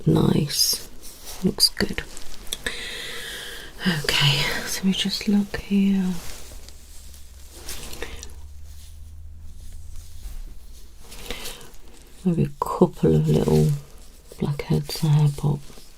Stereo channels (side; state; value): both; identical; correlation 1.00